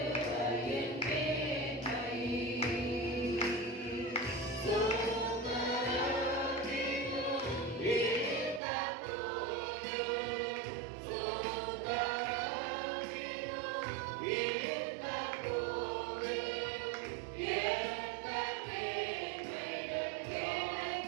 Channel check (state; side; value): drops out; left; at 8.6 s